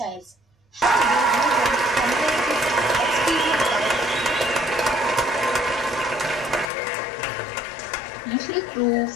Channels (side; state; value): right; drops out; at 6.7 s